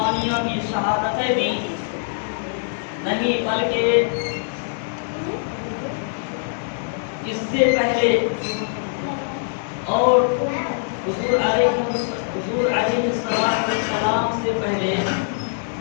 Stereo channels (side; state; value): right; silent; 60 dB below the other